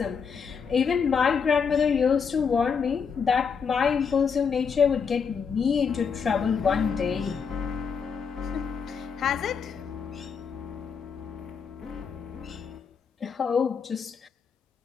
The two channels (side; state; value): right; quieter; 6.2 dB